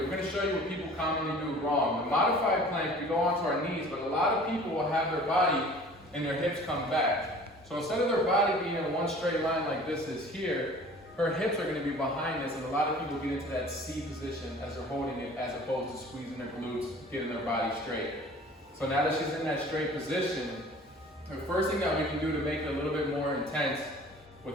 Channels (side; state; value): both; normal; correlation 0.47